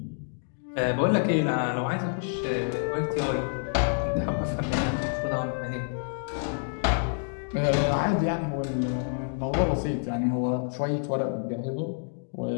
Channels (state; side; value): silent; right; digital silence